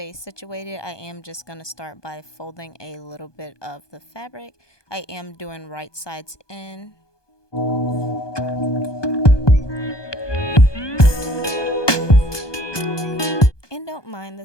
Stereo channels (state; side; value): late; right; 1.2 ms